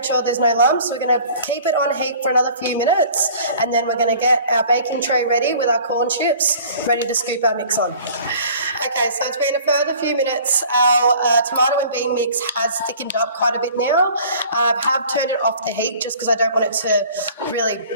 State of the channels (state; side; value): inverted; both; correlation -0.49